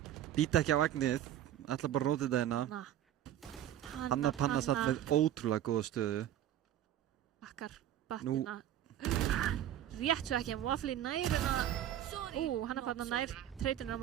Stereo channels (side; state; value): left; quieter; 11.6 dB